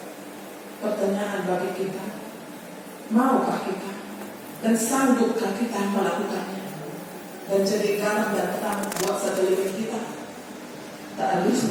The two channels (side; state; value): both; identical; correlation 1.00